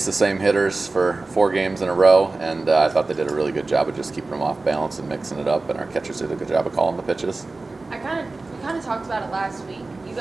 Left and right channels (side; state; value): left; quieter; 3.4 dB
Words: the same hitters for 4 games in a row, and I thought they did a really good job of just keeping them off balance and mixing it up, and our catchers did a good job of calling the pitches. We kind of talked about it last week. You